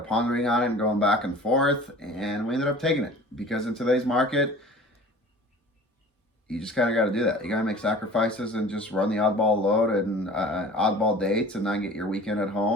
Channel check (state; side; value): normal; both; correlation 0.43